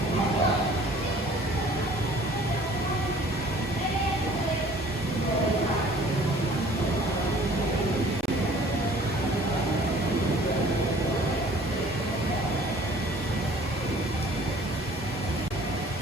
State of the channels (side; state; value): both; normal; correlation 0.52